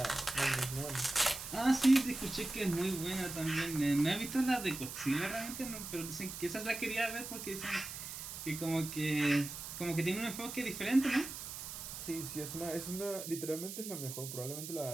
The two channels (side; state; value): right; noise; hiss, 8 dB below the sound